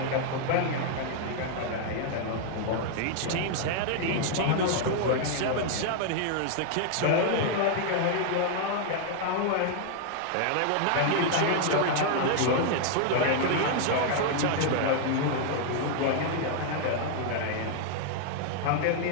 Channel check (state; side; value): different; both; correlation 0.00